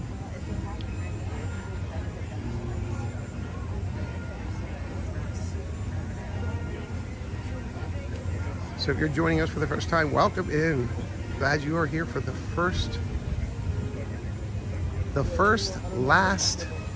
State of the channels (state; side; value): identical; both; correlation 1.00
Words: So if you're joining us for the first time, welcome in. Glad you are here for the first last